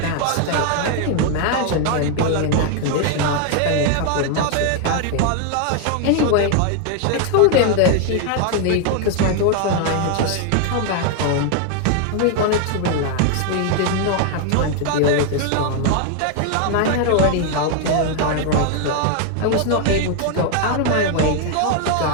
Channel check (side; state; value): both; different; correlation 0.00